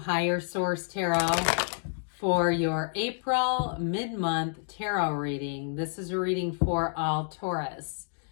Source Tarot for your April mid-month tarot reading. This is a reading for all Taurus.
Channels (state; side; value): silent; right; digital silence